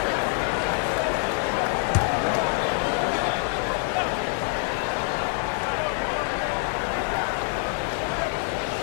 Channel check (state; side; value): quieter; right; 39.3 dB